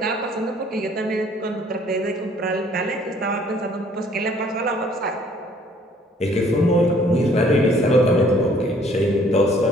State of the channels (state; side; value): normal; both; correlation 0.59